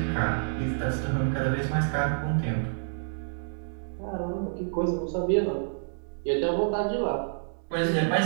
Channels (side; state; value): left; silent; digital silence